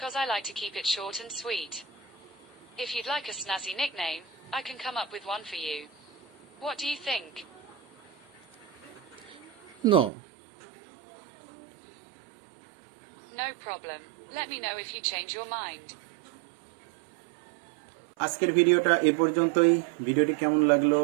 I like to keep it short and sweet. If you'd like a snazzy nickname, I can come up with one for you. What do you think? No. No problem. Let me know if you change your mind. আজকের ভিডিওটা এ পর্যন্তই। ভিডিওটি কেমন লাগলো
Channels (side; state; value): left; drops out; at 10.1 s